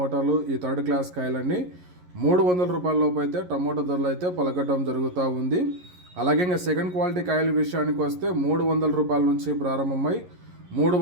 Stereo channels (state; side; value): late; left; 11 ms